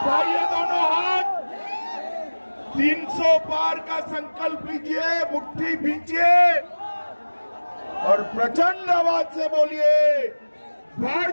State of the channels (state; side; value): inverted; both; correlation -1.00